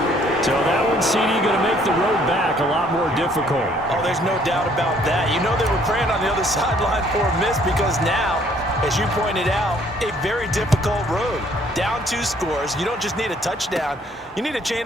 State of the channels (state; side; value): normal; both; correlation 0.62